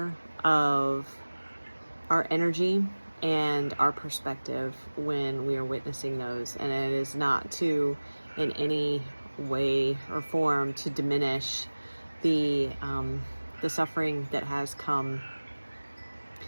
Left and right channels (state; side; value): inverted; both; correlation -1.00